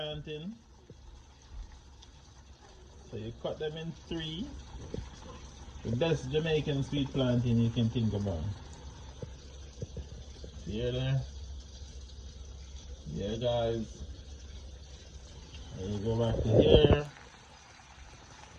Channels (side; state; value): both; identical; correlation 1.00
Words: So you cut them in three. The best Jamaican sweet plantain you can think about. See there? Yeah guys. And you go back to here.